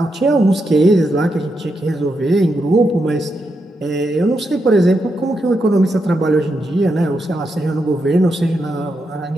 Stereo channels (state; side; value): normal; both; correlation 0.84